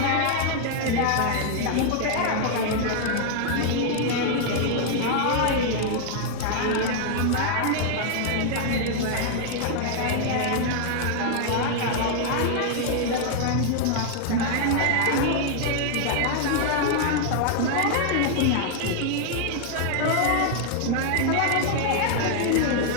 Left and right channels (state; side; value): different; both; correlation 0.00